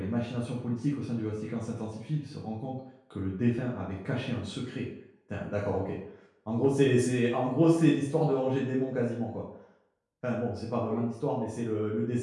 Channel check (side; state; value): both; identical; correlation 1.00